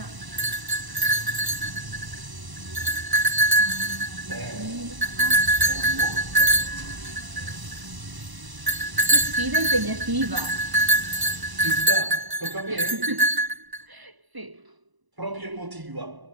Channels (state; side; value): late; left; 1.0 ms